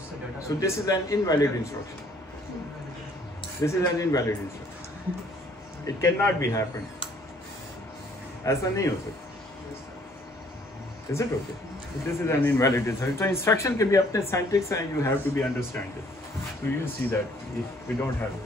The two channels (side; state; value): both; normal; correlation 0.61